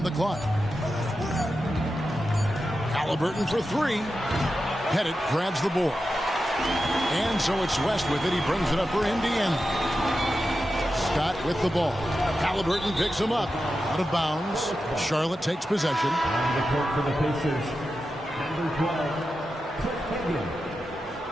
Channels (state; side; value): normal; both; correlation 0.91